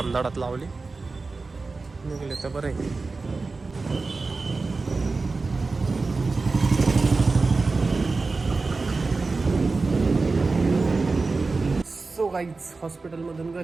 लावली. निघले तर बरं आहे. सो गाईज हॉस्पिटलमधून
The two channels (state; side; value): quieter; left; 3.9 dB